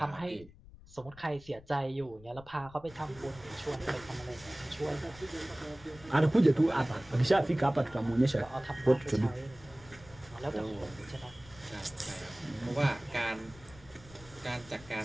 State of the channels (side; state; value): left; noise; rumble, 21 dB below the sound